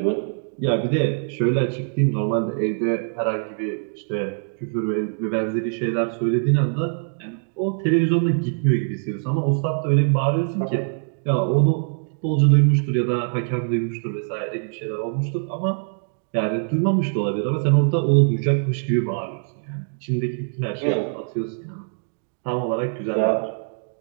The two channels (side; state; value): left; silent; digital silence